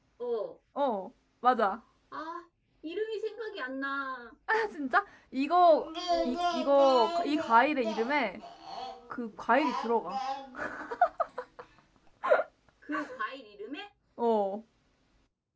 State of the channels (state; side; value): identical; both; correlation 1.00